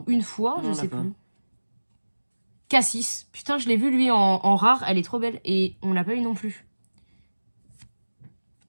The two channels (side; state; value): both; inverted; correlation -1.00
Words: une fois, Non, je on sais l'a pas. plus. Cassis. Putain, je l'ai vu lui en rare. Elle est trop belle. Et on l'a pas eu non plus.